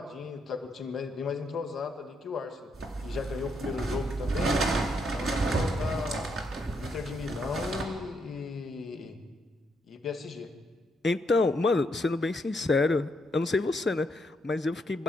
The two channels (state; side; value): normal; both; correlation 0.77